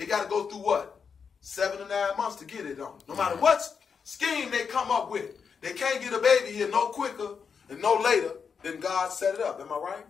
got to go through what? 7 to 9 months to get it on. No matter what scheme they come up with, they can't get a baby here no quicker and no later than God set it up. Am I right?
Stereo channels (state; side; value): quieter; right; 6.2 dB